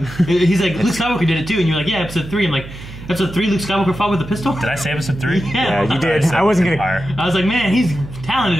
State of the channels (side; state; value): right; noise; hum, 14 dB below the sound